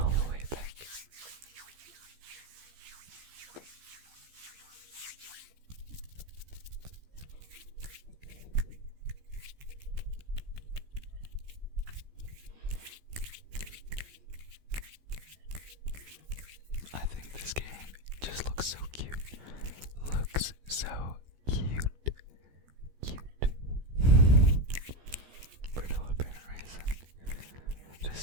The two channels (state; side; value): late; left; 15 ms